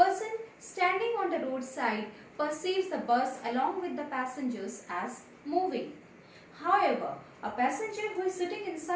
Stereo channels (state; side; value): identical; both; correlation 1.00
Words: standing on the roadside perceives the bus along with the passengers as moving. However, a passenger who is sitting